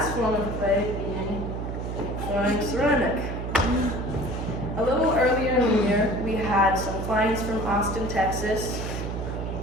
form of clay being flowing ceramic. A little earlier in the year, we had some clients from Austin, Texas,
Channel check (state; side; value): noise; right; hum, 5 dB below the sound